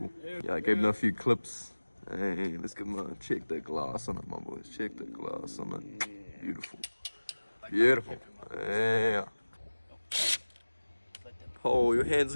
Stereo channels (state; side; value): inverted; both; correlation -1.00